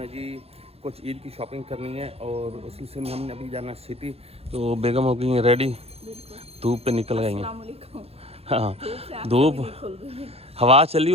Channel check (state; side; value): late; left; 0.29 ms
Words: है जी, कुछ ईद की शॉपिंग करनी है और उस सिलसिले में हमने अभी जाना है सिटी। तो बेगम हो गई है रेडी, धूप पे निकल गई हैं। हाँ, धूप, हवा चली